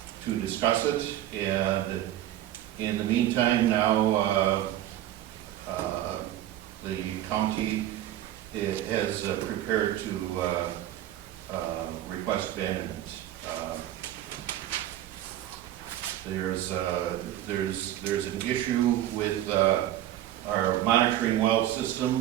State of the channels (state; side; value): quieter; left; 13.0 dB